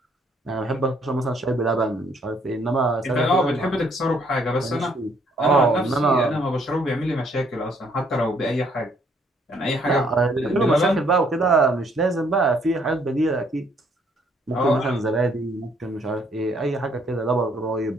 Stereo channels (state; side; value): normal; both; correlation 0.66